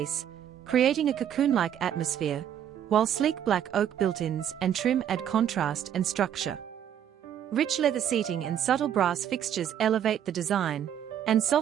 creating a cocoon-like atmosphere, while sleek black oak built-ins and trim add contrast and structure. Rich leather seating and subtle brass fixtures elevate the design, and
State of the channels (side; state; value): left; quieter; 9.8 dB